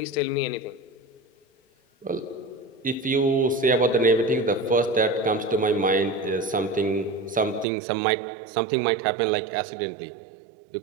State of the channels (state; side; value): drops out; left; at 7.7 s